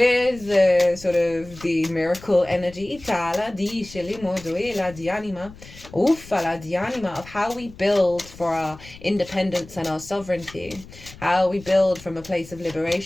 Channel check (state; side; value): noise; left; rumble, 19 dB below the sound